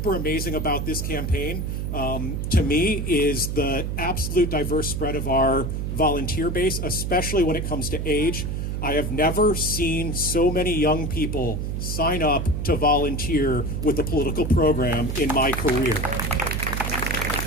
amazing about this campaign, to me, is the absolute diverse spread of our volunteer base, especially when it comes to age. I have never seen so many young people sign up to volunteer with the political program in my career.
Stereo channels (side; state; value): right; noise; hum, 2 dB below the sound